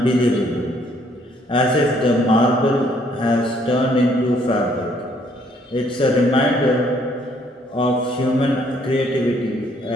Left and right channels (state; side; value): normal; both; correlation 0.65